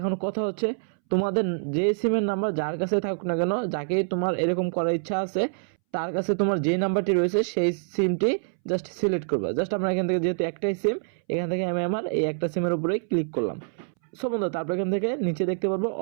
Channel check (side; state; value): left; silent; 61 dB below the other